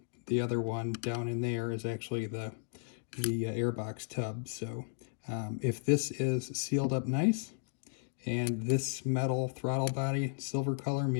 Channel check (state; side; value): silent; right; digital silence